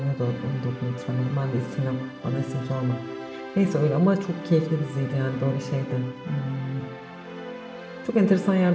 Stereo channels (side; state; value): both; identical; correlation 1.00